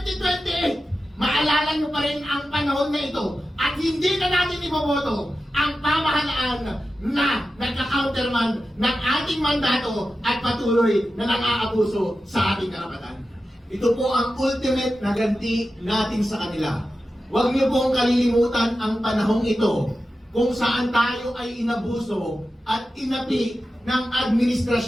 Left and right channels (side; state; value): both; normal; correlation 0.92